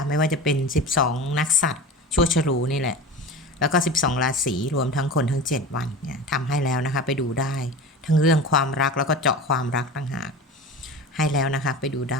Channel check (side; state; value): both; normal; correlation 0.32